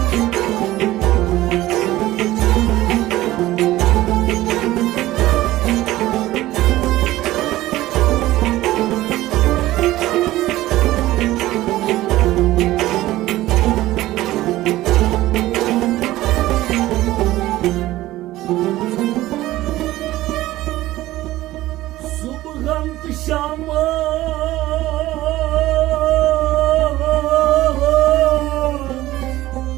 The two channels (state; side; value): quieter; left; 16.3 dB